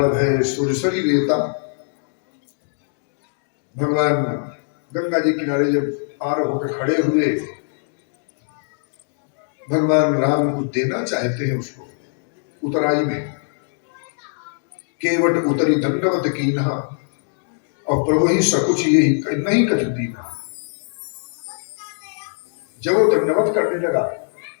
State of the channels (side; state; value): right; silent; digital silence